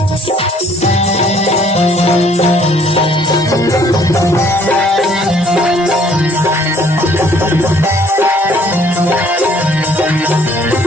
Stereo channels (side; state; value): both; normal; correlation 0.60